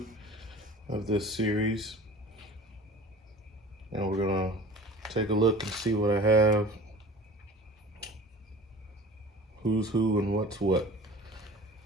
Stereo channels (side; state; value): both; normal; correlation 0.41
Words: of this series. And we're gonna take a look and see what I have, who's who and what's what.